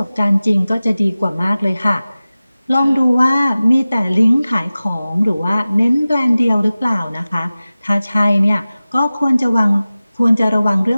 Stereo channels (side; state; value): both; inverted; correlation -0.97